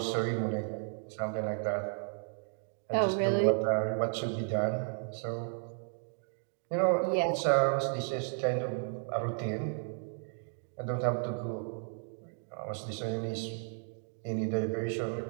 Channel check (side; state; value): left; silent; 55 dB below the other